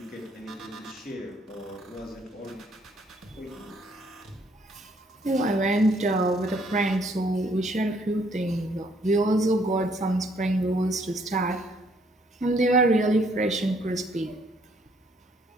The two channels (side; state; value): both; normal; correlation 0.66